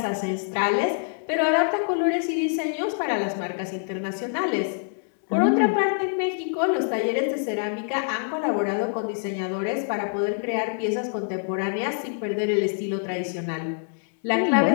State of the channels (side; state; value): right; silent; digital silence